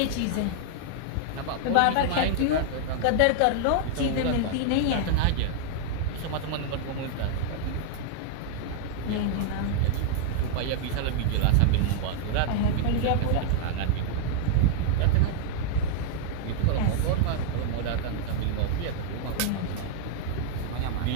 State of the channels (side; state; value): both; different; correlation -0.01